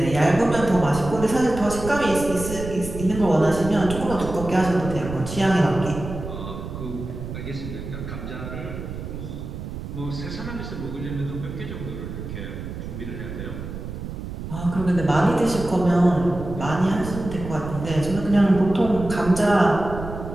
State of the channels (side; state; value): right; noise; rumble, 8 dB below the sound